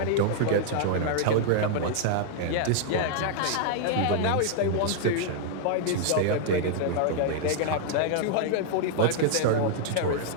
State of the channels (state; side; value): different; both; correlation 0.00